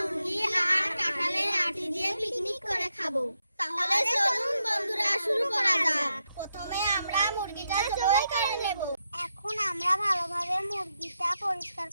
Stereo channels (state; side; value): inverted; both; correlation -0.83